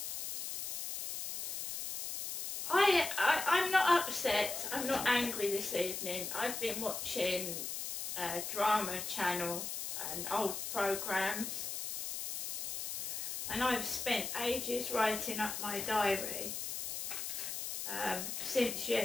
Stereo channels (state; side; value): noise; left; hiss, 4 dB below the sound